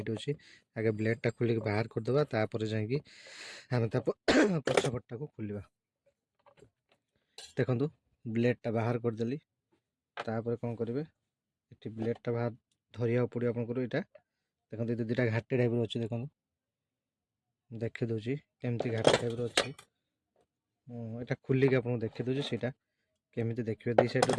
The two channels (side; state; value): both; identical; correlation 1.00